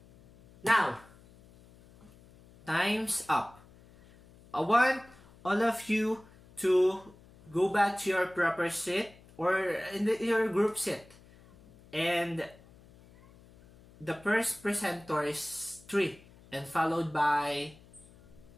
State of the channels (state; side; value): noise; left; hum, 25 dB below the sound